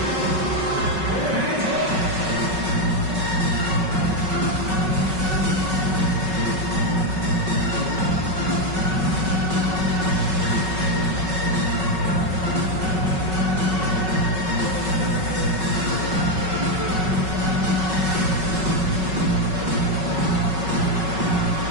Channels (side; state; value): left; late; 5.3 ms